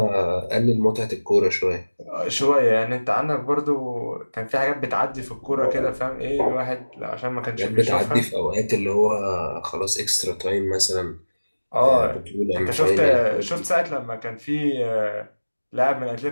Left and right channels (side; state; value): both; inverted; correlation -1.00